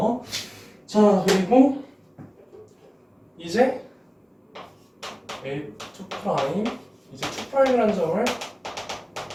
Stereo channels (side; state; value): both; identical; correlation 1.00